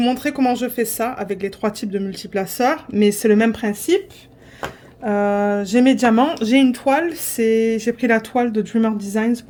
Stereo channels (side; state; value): both; identical; correlation 1.00